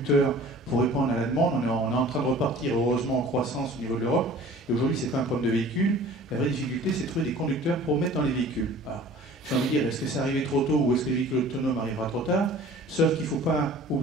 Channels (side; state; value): both; normal; correlation 0.46